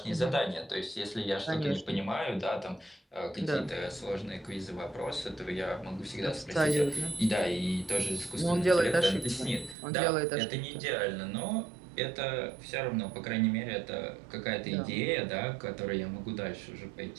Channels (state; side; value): drops out; left; at 9.8 s